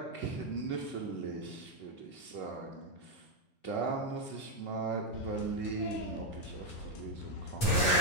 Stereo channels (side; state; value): right; late; 8.8 ms